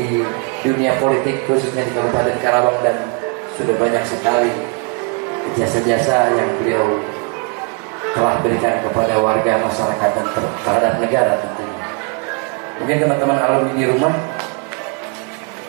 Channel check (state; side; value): quieter; left; 34.2 dB